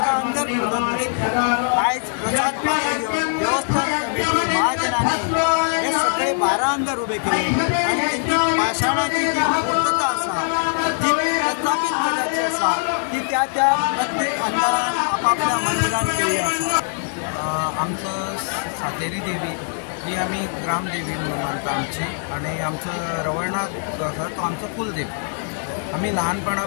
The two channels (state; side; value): silent; right; 61 dB below the other